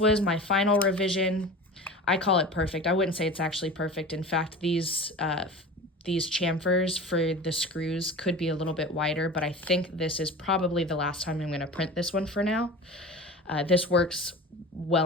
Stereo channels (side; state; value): both; normal; correlation 0.35